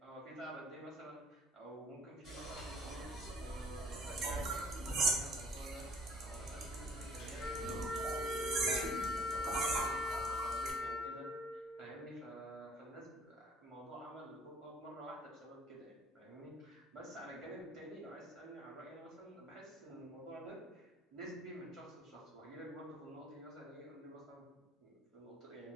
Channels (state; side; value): normal; both; correlation 0.55